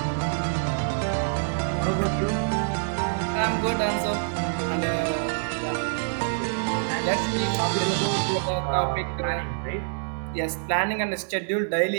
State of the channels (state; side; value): silent; left; digital silence